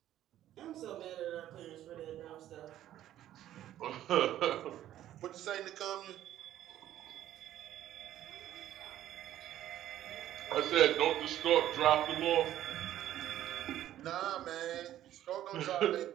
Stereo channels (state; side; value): quieter; left; 12.6 dB